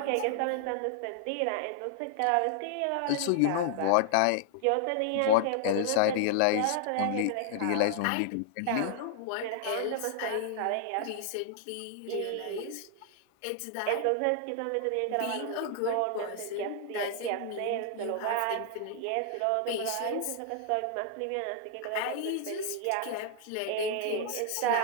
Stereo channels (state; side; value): different; both; correlation -0.01